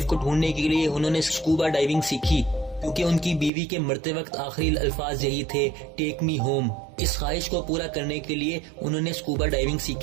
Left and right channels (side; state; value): left; drops out; at 3.5 s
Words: को ढूंढने के लिए उन्होंने स्कूबा डाइविंग सीखी क्योंकि उनकी बीवी के मरते वक्त आखिरी अल्फाज यही थे, टेक मी होम। इस ख्वाहिश को पूरा करने के लिए उन्होंने स्कूबा डाइविंग